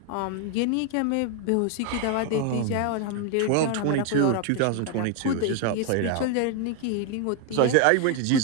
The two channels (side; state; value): both; different; correlation 0.01